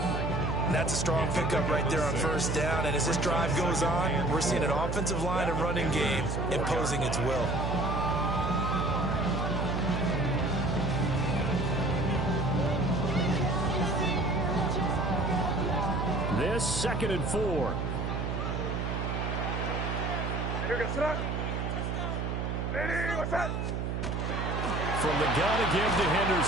That's a strong pickup right there on first down. And as this drive goes on, we're seeing an offensive line and running game imposing its will. This 2nd and 4. From the gun again to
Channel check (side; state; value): right; noise; hum, 1 dB below the sound